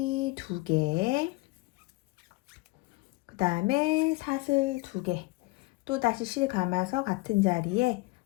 두 개, 그 다음에 사슬 두 개, 또 다시 실 감아서 같은 자리에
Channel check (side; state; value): right; quieter; 23.2 dB